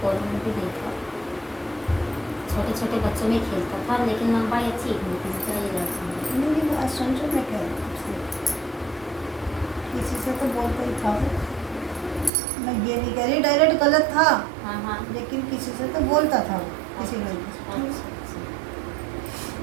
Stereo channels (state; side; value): drops out; left; at 12.3 s